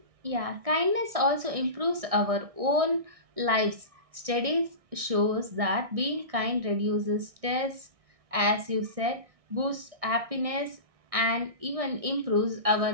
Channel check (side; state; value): left; late; 1.6 ms